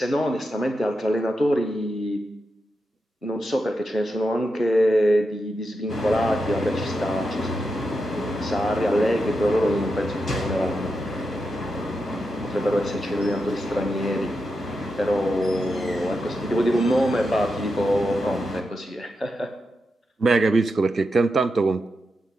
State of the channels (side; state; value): both; normal; correlation 0.87